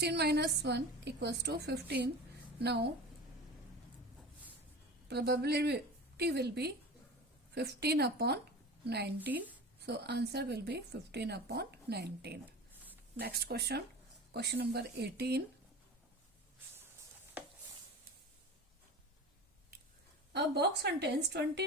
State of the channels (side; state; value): both; normal; correlation 0.34